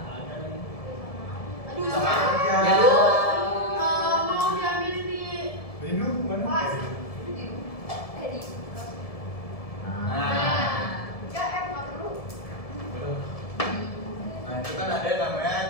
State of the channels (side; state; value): right; late; 1.7 ms